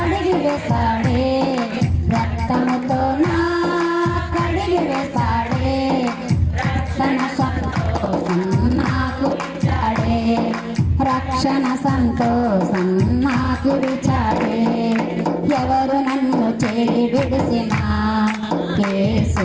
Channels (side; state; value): both; identical; correlation 1.00